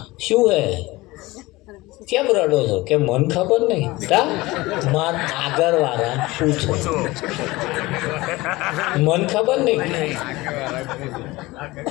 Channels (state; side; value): quieter; right; 20.6 dB